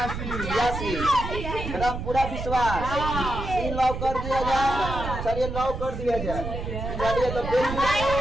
एकदम पूरा विश्वास। लॉक कर दिया जाए। चलिए लॉक कर दिया जाए। चलिए तो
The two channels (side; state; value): right; noise; rumble, 6 dB below the sound